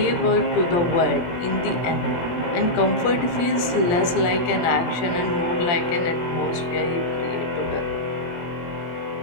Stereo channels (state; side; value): late; right; 17 ms